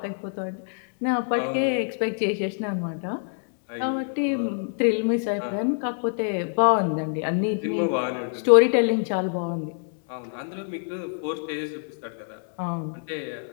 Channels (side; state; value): right; silent; digital silence